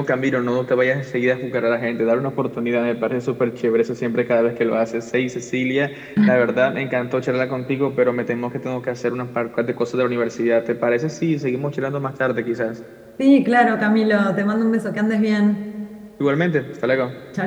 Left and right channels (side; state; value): both; identical; correlation 1.00